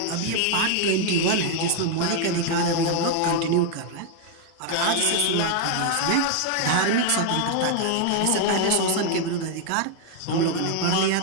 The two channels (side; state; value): both; different; correlation 0.00